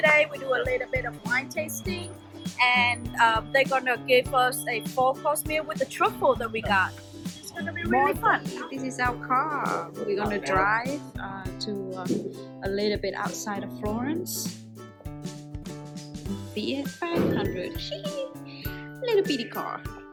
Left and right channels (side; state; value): both; identical; correlation 1.00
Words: We do a little bit of wine tasting, and they're gonna give us a 4-course meal with the truffle that we got. It's gonna be really fun. This is our car. We're gonna drive to a little bit outside of Florence. Fiat 500. Little bitty car.